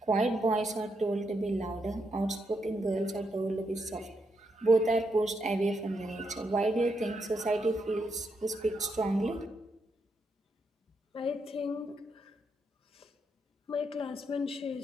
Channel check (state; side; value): normal; both; correlation 0.81